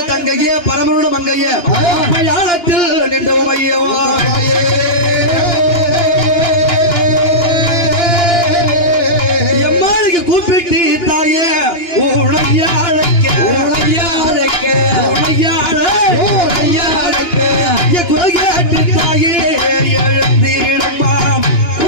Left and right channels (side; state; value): right; late; 2.9 ms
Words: தங்கையே பரமருட மங்கையே மலையாளத்தில் நின்ற உமையவா கூப்பிட்டு தாயே உழையாழக்க குலகேட்டு தாயே எழுந்திடம்மா